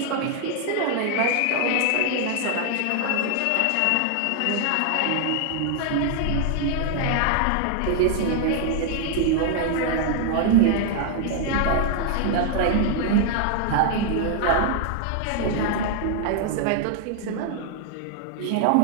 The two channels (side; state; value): both; different; correlation 0.00